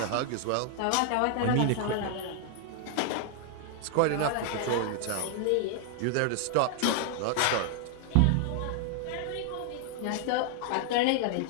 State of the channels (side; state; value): both; different; correlation 0.00